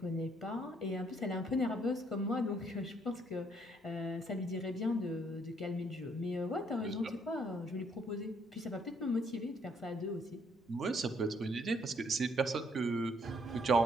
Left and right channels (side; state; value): both; normal; correlation 0.68